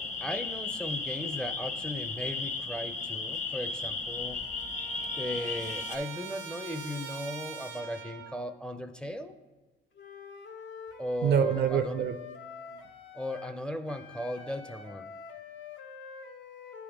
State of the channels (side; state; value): both; normal; correlation 0.48